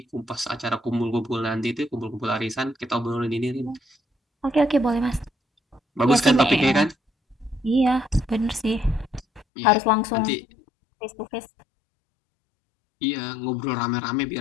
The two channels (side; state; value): right; drops out; at 9.5 s